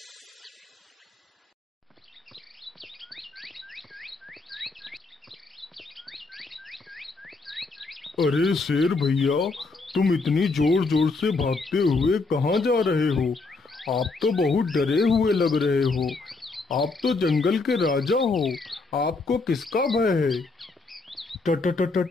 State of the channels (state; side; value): quieter; right; 3.8 dB